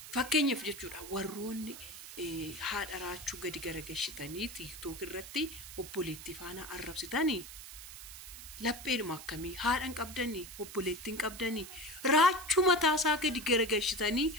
fakkeenyaaf jechuudha warroonni haadha raachuu gadi garagalchitanii tiiktook irratti obboleettii faana arrabsitanii lapheedhuma akkamii haadhan qabdanii obboleettiin qabdanii raachuu mataasaa gadi garagalchitanii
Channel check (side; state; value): right; noise; hiss, 13 dB below the sound